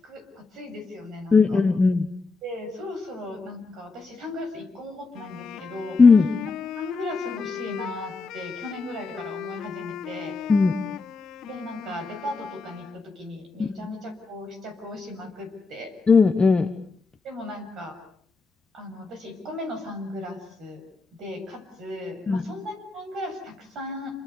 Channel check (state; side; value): quieter; right; 4.2 dB